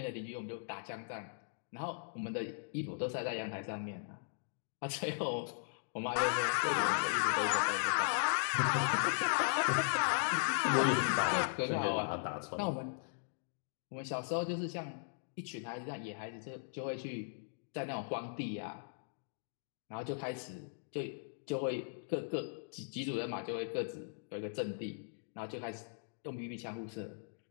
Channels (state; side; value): silent; right; digital silence